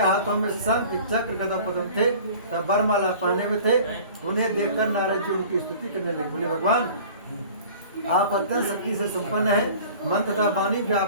में शंख चक्र गदा पद्म थे, तब वरमाला पहने में थे। उन्हें देखकर नारद जी उनकी स्तुति करने लगे। बोले, भगवान आप अत्यंत शक्ति से संपन्न है, मन तथा वाणी भी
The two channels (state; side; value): inverted; both; correlation -0.45